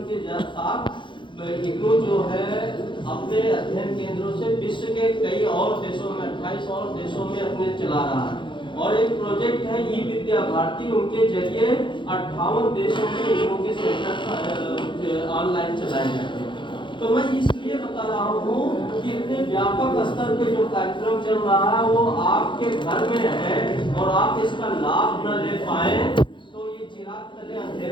के साथ इग्नू जो है अपने अध्ययन केंद्रों से विश्व के कई और देशों में 28 और देशों में अपने चला रहा है। और एक प्रोजेक्ट है ई विद्या भारती, उनके जरिए 58 देशों में इग्नू के सेंटर ऑनलाइन चलाए जाते हैं। तो मैं इसलिए बता रहा हूँ कि इतने व्यापक स्तर पे जो कार्यक्रम चल रहा है वो आपके घर में है, और आप इसका लाभ न ले पाए तो ये चिराग तले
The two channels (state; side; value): late; right; 0.23 ms